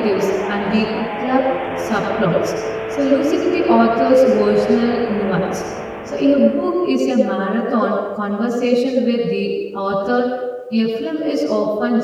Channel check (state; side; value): identical; both; correlation 1.00